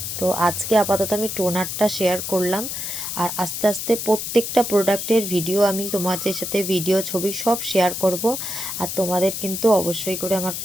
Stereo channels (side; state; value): left; noise; hiss, 5 dB below the sound